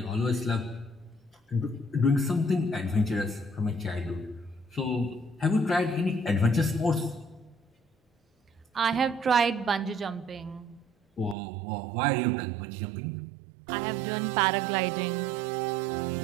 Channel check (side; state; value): left; drops out; at 11.4 s